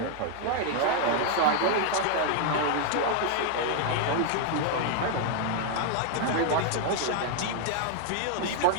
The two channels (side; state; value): both; different; correlation 0.00